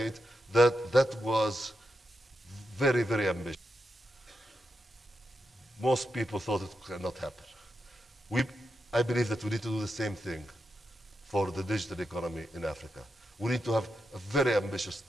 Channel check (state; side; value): normal; both; correlation 0.86